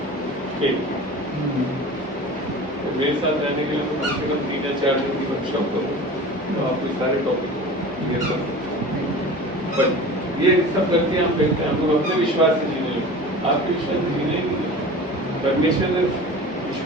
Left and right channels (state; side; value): normal; both; correlation 0.37